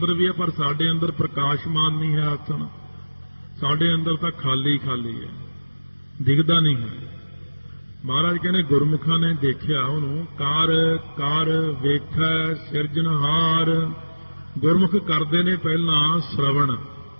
ਵੀ ਹੈ, ਪਰ ਸਾਡੇ ਅੰਦਰ ਪ੍ਰਕਾਸ਼ਮਾਨ ਨਹੀਂ ਹੈ ਆਸਣ। ਸਾਡੇ ਅੰਦਰ ਤਾਂ ਖਾਲੀ ਖਾਲੀ ਹੈ, ਦਿਖਦਾ ਨਹੀਂ ਹੈ। ਮਹਾਰਾਜ ਕਹਿੰਦੇ ਗੁਰਮੁਖਾਂ ਨੇ ਦੇਖਿਆ ਉਹਨੂੰ। ਕਰ ਕਰ ਵੇਖੈ ਸਿਰਜਣਹਾਰ। ਗੁਰਮੁਖ ਕਰਦੇ ਨੇ ਪਹਿਲਾਂ ਸ਼ਰਵਣ,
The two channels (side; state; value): both; inverted; correlation -1.00